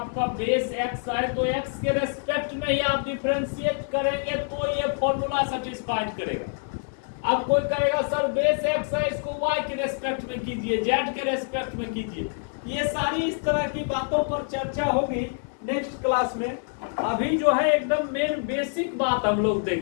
बेस x है तो x के रेस्पेक्ट में ही आप डिफरेंशिएट करेंगे तो ये फॉर्मूला सेटिस्फाइड करेगा। अब कोई कहेगा सर बेस एक्स है, इसको वाई के रेस्पेक्ट में कीजिए, जेड के रेस्पेक्ट में कीजिए। ये सारी इस तरह की बातों पर चर्चा होगी नेक्स्ट क्लास में। अभी जो है एकदम मेन बेसिक बात हम लोग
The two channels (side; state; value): right; silent; digital silence